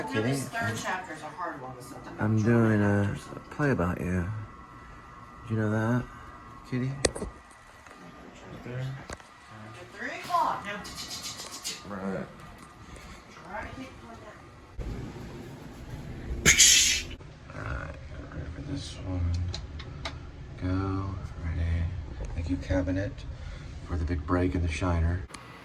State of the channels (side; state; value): both; identical; correlation 1.00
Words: kitty. This third chapter is a hard one with something. I'm doing a play about you. Did you know that, kitty? There. 3 o'clock. Now. Right. Try to hit like that. Alright, ready for this one. Go. Ready. Thank you, cabinet, for the big break in the shiner.